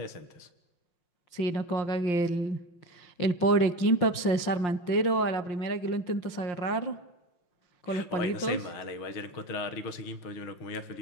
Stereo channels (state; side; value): late; right; 5.7 ms